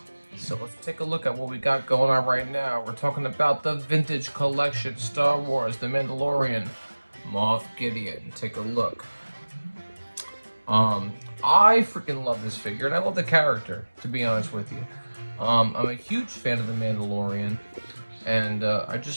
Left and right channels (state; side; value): inverted; both; correlation -1.00